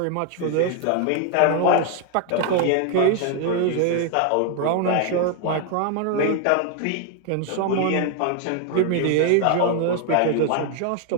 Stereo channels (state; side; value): different; both; correlation 0.00